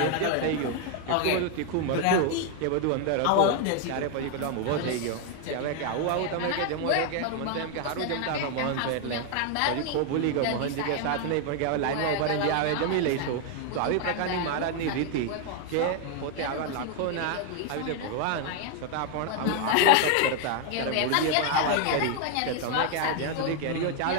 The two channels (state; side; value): different; both; correlation 0.01